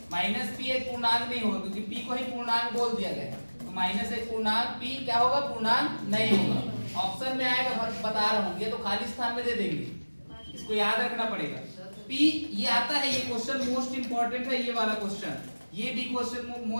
माइनस p एक पूर्णांक नहीं होगा, क्योंकि p को ही पूर्णांक बोल दिया गया है। तो माइनस एक पूर्णांक, p क्या होगा, पूर्णांक नहीं होगा। ऑप्शन में आएगा, बता रहा हूँ, ये तो खाली स्थान में दे देंगे, इसको याद रखना पड़ेगा। p ये आता है, ये क्वेश्चन मोस्ट इंपॉर्टेंट है, ये वाला क्वेश्चन, ये भी क्वेश्चन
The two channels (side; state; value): both; inverted; correlation -1.00